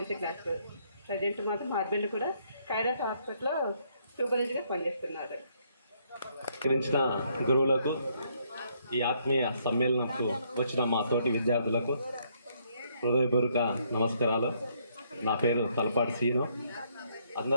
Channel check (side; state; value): both; inverted; correlation -0.70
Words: క్లాస్. ప్రజెంట్ మాత్రం మా హస్బెండ్ కూడా కైరాస్ హాస్పిటల్లో సూపర్వైజర్గా పనిచేస్తున్నారు. గురించిన గురువులకు, ఈ ఆత్మీయ సమ్మేళనంకు వచ్చిన మా తోటి విద్యార్థులకు హృదయపూర్వక నమస్కారాలు. నా పేరు తలపాటి సీను.